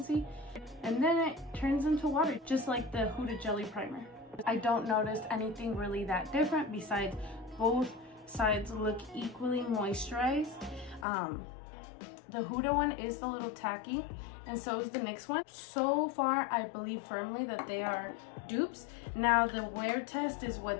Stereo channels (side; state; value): right; drops out; at 11.1 s